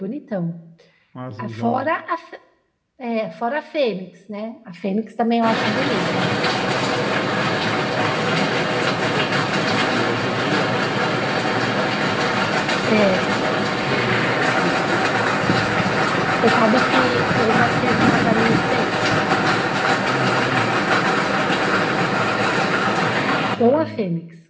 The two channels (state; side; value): identical; both; correlation 1.00